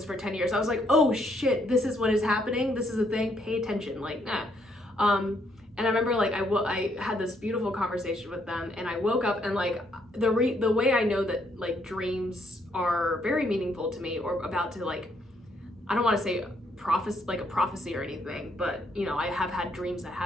for 10 years, I was like, oh shit, this is what is happening. This is a thing, pay attention, like, nah. And I remember like I had this beautiful conversation with them, and I woke up and like the way I know that like dreams are very meaningful to me, or about to like, I don't want to say a prophecy or anything, but you know, I have had dreams that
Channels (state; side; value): normal; both; correlation 0.72